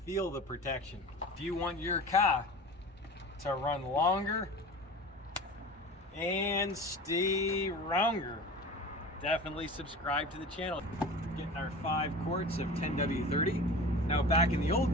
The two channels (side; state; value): both; normal; correlation 0.35